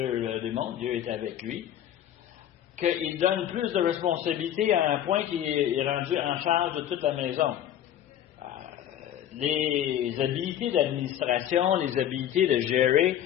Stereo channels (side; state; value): right; quieter; 10.8 dB